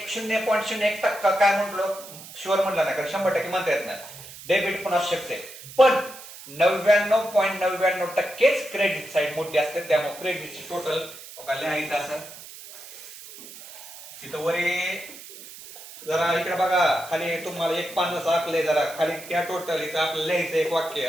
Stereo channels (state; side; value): noise; right; hiss, 16 dB below the sound